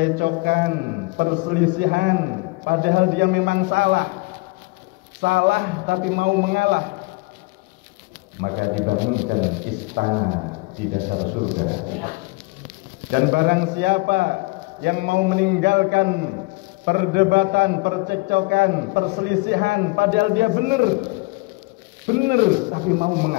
perselisihan, padahal dia memang salah tapi mau mengalah, maka dibangunkan istana di dasar surga. Dan barang siapa yang mau meninggalkan perdebatan, percekcokan, perselisihan, padahal dia benar tapi mau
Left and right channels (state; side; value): quieter; right; 25.2 dB